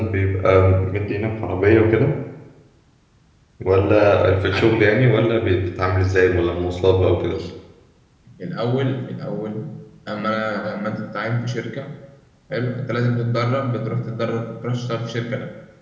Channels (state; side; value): identical; both; correlation 1.00